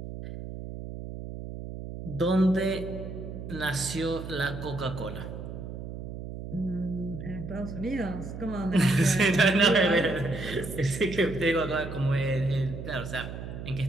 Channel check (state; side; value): noise; right; hum, 9 dB below the sound